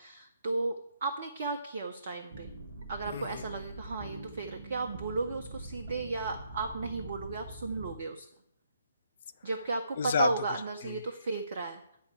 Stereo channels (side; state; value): both; inverted; correlation -0.74